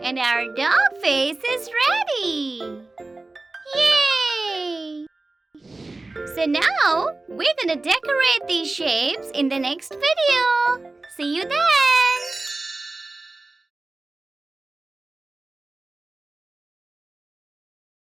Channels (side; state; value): left; quieter; 3.2 dB